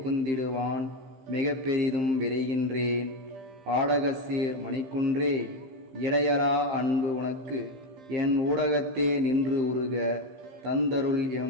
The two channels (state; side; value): late; left; 15 ms